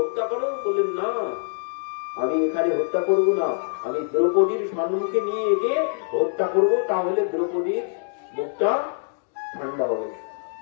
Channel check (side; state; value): right; silent; digital silence